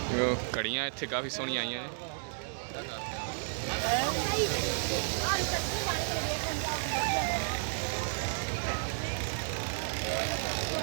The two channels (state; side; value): silent; left; digital silence